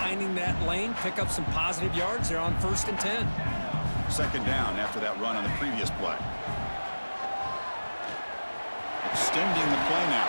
that lane, pick up some positive yards. They're on 1st and 10. 2nd down after that run on the previous play. Extending the play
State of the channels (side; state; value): both; inverted; correlation -1.00